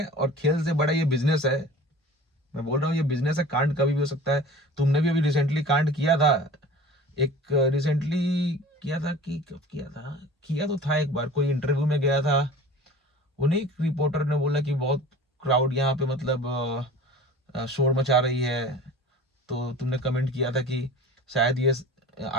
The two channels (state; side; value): normal; both; correlation 0.41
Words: और खेल से बड़ा ये बिजनेस है। मैं बोल रहा हूँ ये बिजनेस है, कांड कभी भी हो सकता है। तुमने भी अभी रिसेंटली कांड किया था, एक रिसेंटली किया था कि कब किया था, किया तो था एक बार, कोई इंटरव्यू में गया था, उन्हीं एक रिपोर्टर ने बोला कि बहुत क्राउड यहाँ पे मतलब शोर मचा रही है, तो तुमने कमेंट किया था कि शायद ये